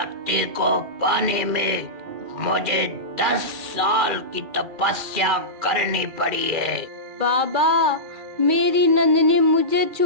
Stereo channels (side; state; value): left; late; 2.3 ms